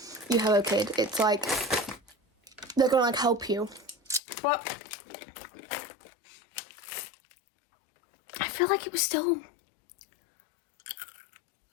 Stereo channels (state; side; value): drops out; right; at 4.2 s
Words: you have a kid. It's like they're gonna like help you, but I feel like it was still